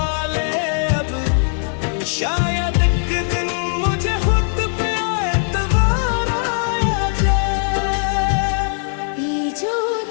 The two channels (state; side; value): silent; right; 56 dB below the other